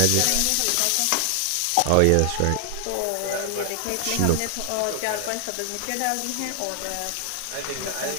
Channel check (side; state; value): both; different; correlation 0.00